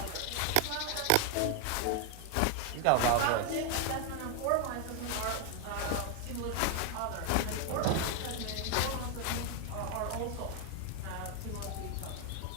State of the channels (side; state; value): both; different; correlation 0.01